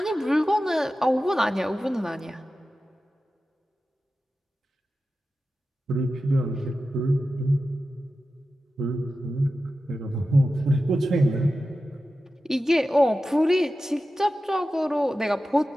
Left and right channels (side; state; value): both; normal; correlation 0.93